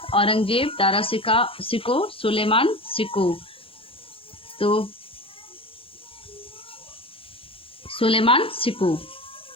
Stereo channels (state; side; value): late; right; 0.27 ms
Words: औरंगजेब, दारा सिको, सुलेमान सिको। तो सुलेमान सिको।